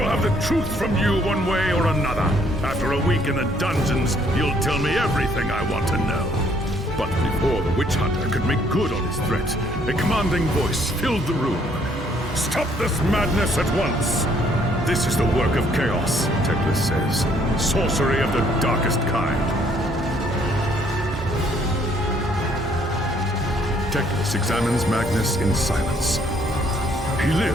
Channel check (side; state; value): both; normal; correlation 0.65